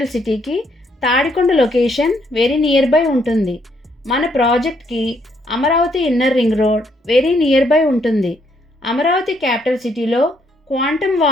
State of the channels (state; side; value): normal; both; correlation 0.71